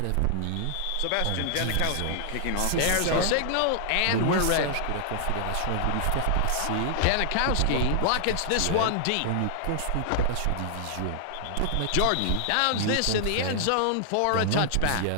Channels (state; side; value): different; both; correlation -0.01